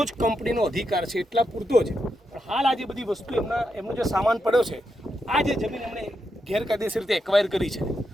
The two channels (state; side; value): normal; both; correlation 0.84